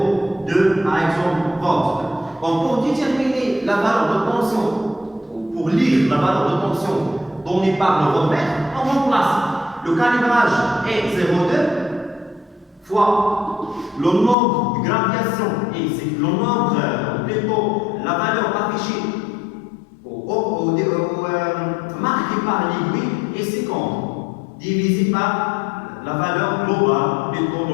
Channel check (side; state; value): right; drops out; at 14.4 s